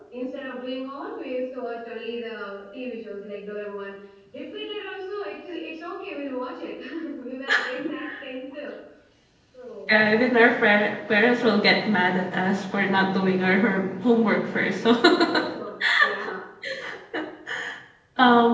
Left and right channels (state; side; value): identical; both; correlation 1.00